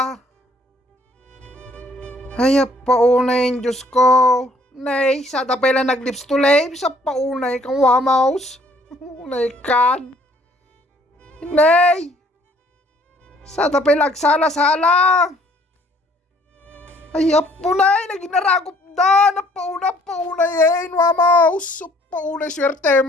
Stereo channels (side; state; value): both; normal; correlation 0.61